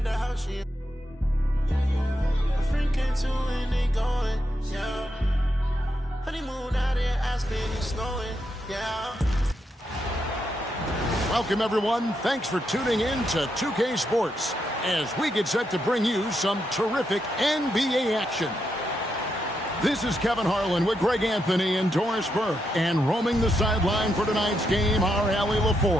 at the house, she a freak into and they going, yeah. Honeymoon out in Aspen, it's snowing, yeah. Welcome, everyone. Thanks for tuning in to 2K Sports as we get set to bring you some terrific NBA action. This is Kevin Harlan with Greg Anthony and Doris Burke, and roaming the sideline for tonight's game, our Allie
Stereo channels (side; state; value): both; normal; correlation 0.82